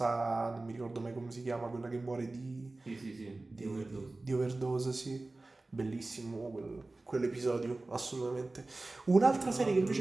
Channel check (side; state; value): left; quieter; 3.1 dB